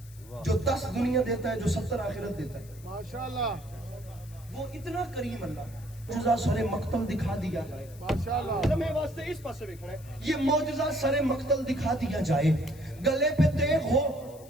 جو 10 دنیا دیتا ہے جو 70 آخرت دیتا ہے ماشاءاللہ وہ اتنا کریم اللہ معجزہ سر مقتل دکھا دیا جائے ماشاءاللہ میں واسطے اس پاس سے دیکھنا ہے یہ معجزہ سر مقتل دکھا دیا جائے گلے پہ تیغ ہو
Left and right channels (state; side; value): noise; left; hiss, 23 dB below the sound